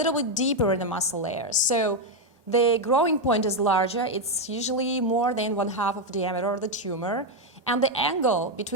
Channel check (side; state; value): both; normal; correlation 0.04